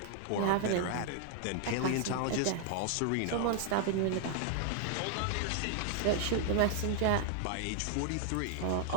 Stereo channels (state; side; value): different; both; correlation 0.00